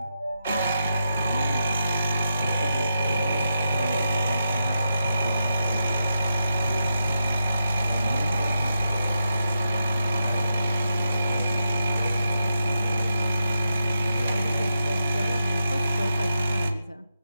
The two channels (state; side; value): inverted; both; correlation -0.86